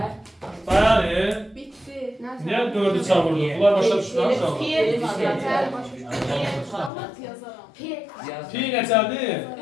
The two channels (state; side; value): drops out; right; at 6.9 s